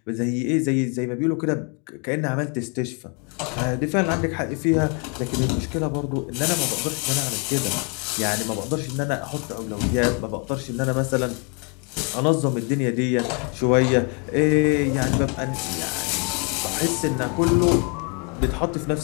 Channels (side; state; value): right; quieter; 35.6 dB